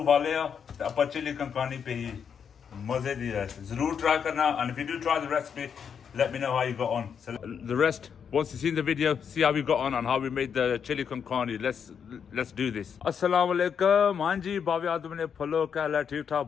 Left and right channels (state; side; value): quieter; right; 7.2 dB